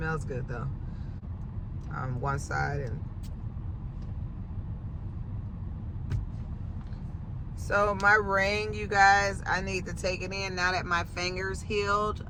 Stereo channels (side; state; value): both; identical; correlation 1.00